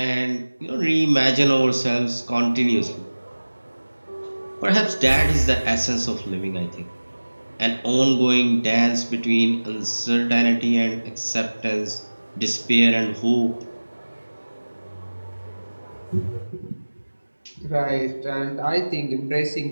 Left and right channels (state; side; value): inverted; both; correlation -1.00